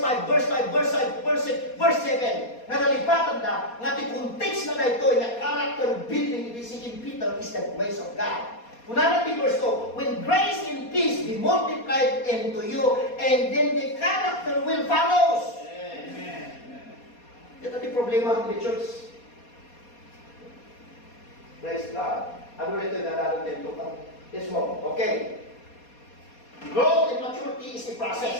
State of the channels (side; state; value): right; late; 4.2 ms